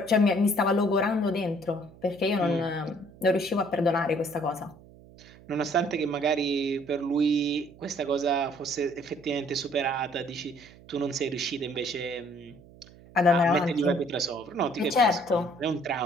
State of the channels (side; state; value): right; noise; hum, 23 dB below the sound